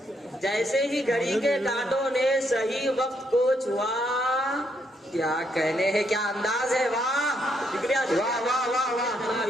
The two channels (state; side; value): normal; both; correlation 0.75